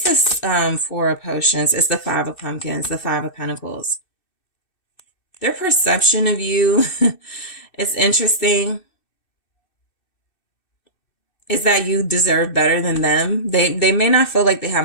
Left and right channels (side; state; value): right; late; 2.6 ms